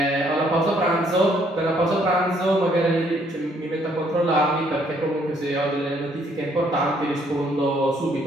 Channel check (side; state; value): both; normal; correlation 0.67